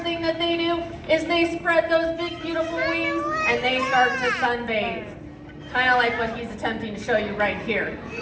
thing that they do is they spread those big, beautiful wings, and they start to sunbathe. Kind of like what he's attempting to show you right here.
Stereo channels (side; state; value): both; identical; correlation 1.00